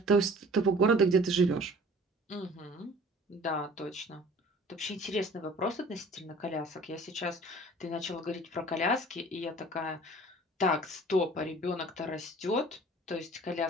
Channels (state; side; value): normal; both; correlation 0.48